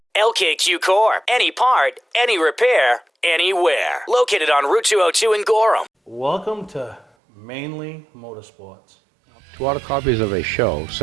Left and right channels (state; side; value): drops out; left; at 7.1 s